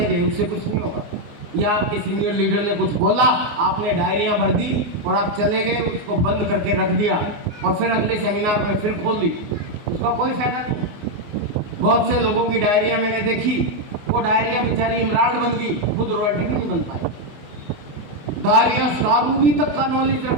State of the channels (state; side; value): late; left; 24 ms